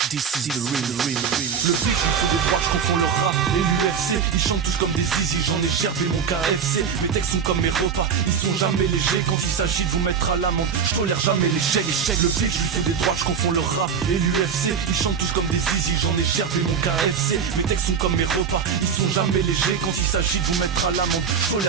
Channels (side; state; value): left; quieter; 6.8 dB